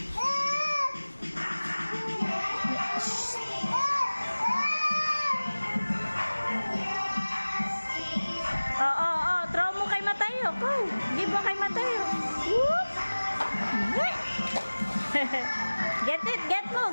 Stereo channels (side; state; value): both; inverted; correlation -1.00